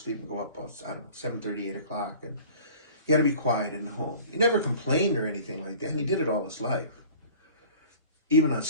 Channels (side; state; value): both; inverted; correlation -0.45